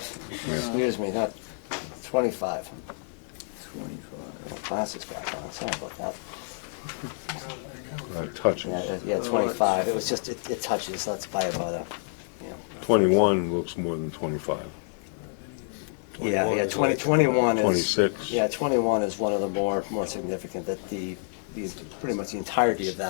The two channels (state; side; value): silent; right; 59 dB below the other